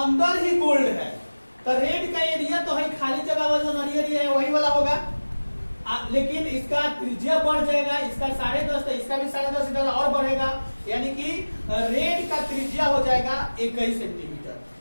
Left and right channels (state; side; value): inverted; both; correlation -1.00